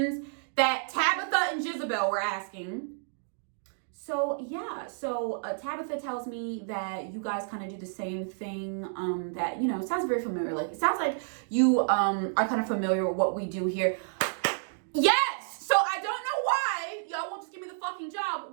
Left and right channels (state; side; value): silent; left; digital silence